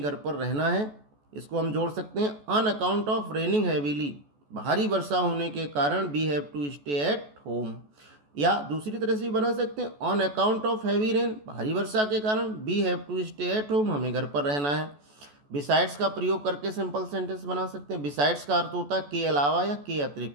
घर पर रहना है। इसको हम जोड़ सकते हैं, on account of raining heavily, भारी वर्षा होने के कारण we have to stay at home. या दूसरी तरह से भी बना सकते हैं, on account of heavy rain, भारी वर्षा के कारण we have to stay at home, हमें घर पर रहना है। बिसाइड्स का प्रयोग करके सिंपल सेंटेंस बना सकते हैं। बिसाइड्स का अर्थ होता है के अलावा या के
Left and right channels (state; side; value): late; left; 14 ms